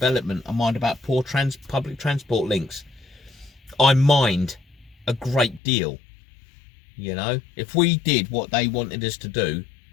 I mind about poor public transport links. I mind a great deal. You know, if we did what they wanted us to do,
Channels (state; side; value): drops out; right; at 5.6 s